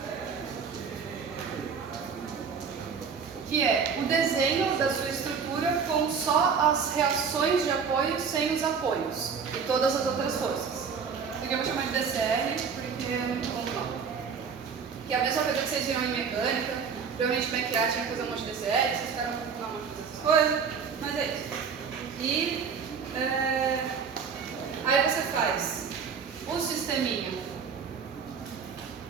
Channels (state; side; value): quieter; left; 6.1 dB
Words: que é o desenho da sua estrutura com só as reações de apoio sem os apoios e todas as outras forças. Isso aqui eu vou chamar de DCR porque é muito bom não. Que é a mesma coisa que vocês viram em mecânica. Provavelmente McLaren tinha que fazer um monte de DCR, vocês ficaram com um monte de essas coisas, mas é isso. E aí você faz o sisteminha